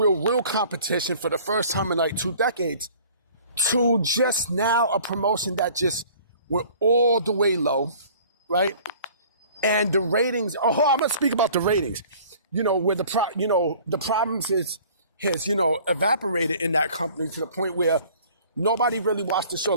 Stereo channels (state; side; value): inverted; both; correlation -0.50